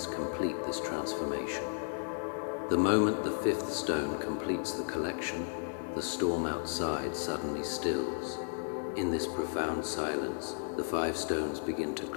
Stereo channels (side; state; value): right; silent; digital silence